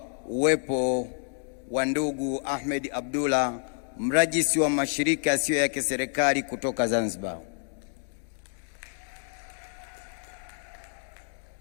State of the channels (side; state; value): right; silent; 59 dB below the other